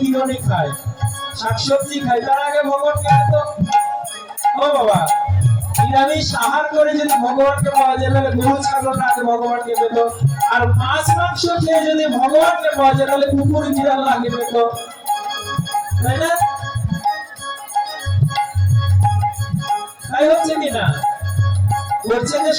কিরণই খায়, শাকসবজি খায়, তার আগে ভগবানকে তো ও বাবা নিরামিষ আহার করে যদি ভগবানকে পাওয়া যায় তাহলে গরু ছাগলরা আগে ভগবানকে পেত। আর মাছ মাংস খেয়ে যদি ভগবানকে পাওয়া যায় তাহলে কুকুর বিড়াল আগে পেত, তাই না? তাই হচ্ছে কিনা? বলছে যে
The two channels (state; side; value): identical; both; correlation 1.00